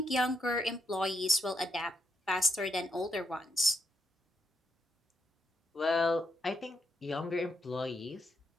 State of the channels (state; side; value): normal; both; correlation 0.80